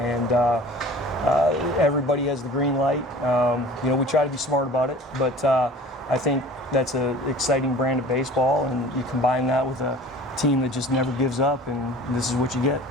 everybody has the green light. You know, we try to be smart about it, but I think that's an exciting brand of baseball, and you combine that with a team that just never gives up, and this is what you get.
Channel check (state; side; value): normal; both; correlation 0.43